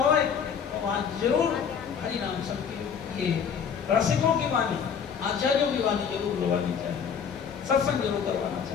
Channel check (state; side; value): quieter; right; 7.1 dB